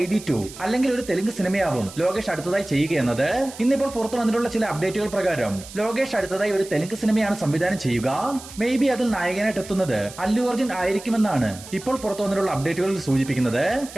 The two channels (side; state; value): right; noise; hiss, 16 dB below the sound